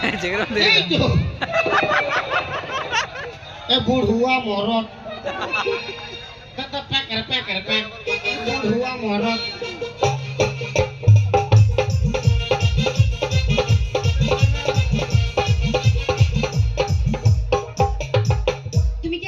এই তো এ বুড়ুয়া মরদ কত প্যাকের প্যাক বুড়ুয়া মরদ তুমি কি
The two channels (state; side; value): identical; both; correlation 1.00